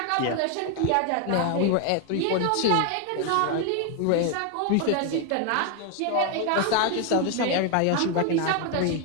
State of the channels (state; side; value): different; both; correlation 0.01